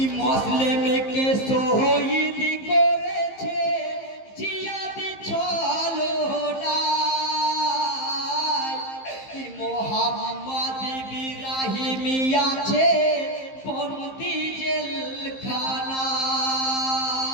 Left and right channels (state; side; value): late; right; 15 ms